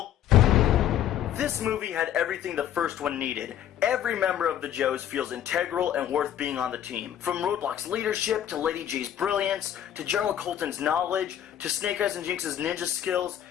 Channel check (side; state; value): right; quieter; 10.7 dB